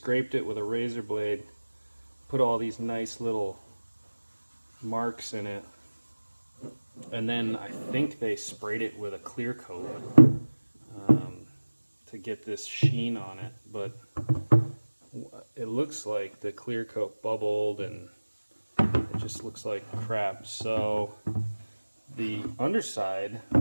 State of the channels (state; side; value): inverted; both; correlation -1.00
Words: it with a razor blade, put all these nice little marks in it, and then I think they sprayed it with a clear coat to get this sheen on it, but it looks like the clear coat bubbled and it just looks like crap. So the underside,